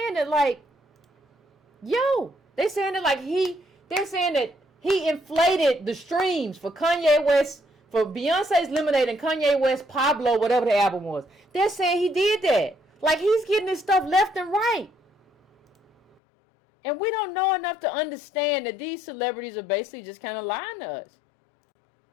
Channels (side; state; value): right; drops out; at 16.2 s